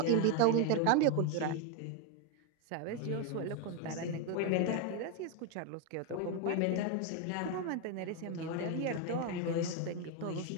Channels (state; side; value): different; both; correlation 0.01